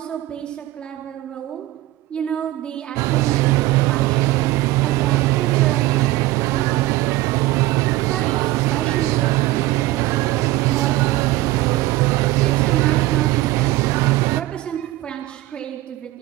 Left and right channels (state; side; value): quieter; left; 17.0 dB